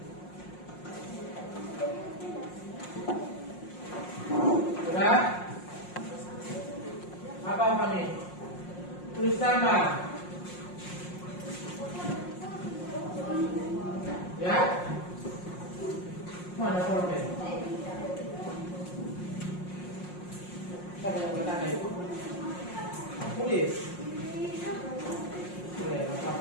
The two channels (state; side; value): late; right; 5.6 ms